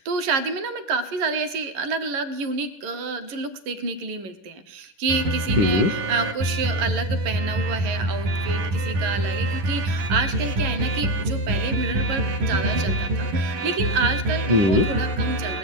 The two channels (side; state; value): left; late; 10 ms